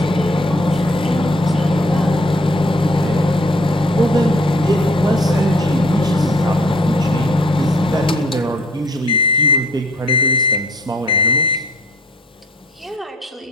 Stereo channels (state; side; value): normal; both; correlation 0.58